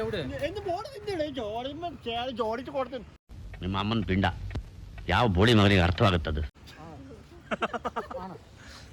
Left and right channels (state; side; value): identical; both; correlation 1.00